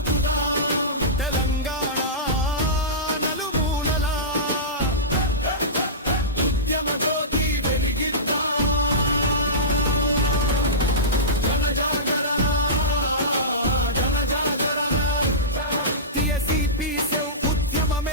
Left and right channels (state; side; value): normal; both; correlation -0.19